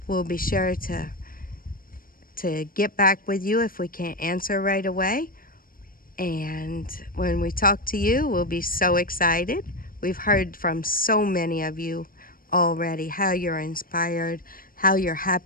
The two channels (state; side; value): late; right; 0.41 ms